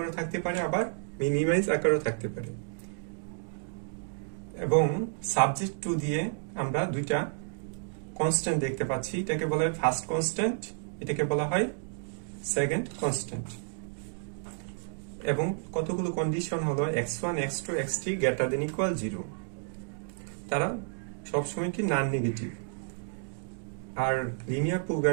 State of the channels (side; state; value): left; silent; digital silence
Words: থাকতে পারে, আবার মিনিমাইজ আকারেও থাকতে পারে। এবং সাবজেক্ট টু দিয়ে আমরা দুইটা কনস্ট্যান্ট দেখতে পাচ্ছি। এটাকে বলা হয় ফার্স্ট কনস্ট্যান্ট, এটাকে বলা হয় সেকেন্ড কনস্ট্যান্ট। এবং কতগুলো কন্ডিশন হলো x1 x2 x3 greater than equal 0। তারা সবসময় কি নন নেগেটিভ। আর লিনিয়ার